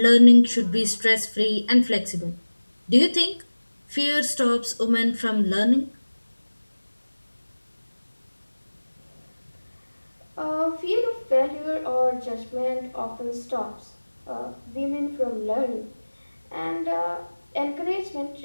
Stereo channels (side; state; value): both; inverted; correlation -1.00